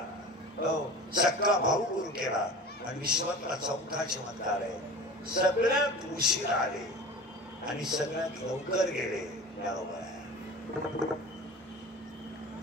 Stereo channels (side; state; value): both; normal; correlation 0.36